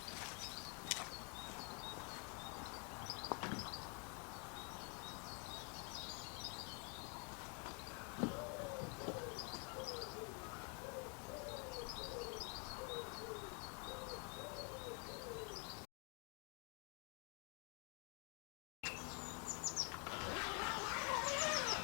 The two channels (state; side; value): quieter; right; 36.9 dB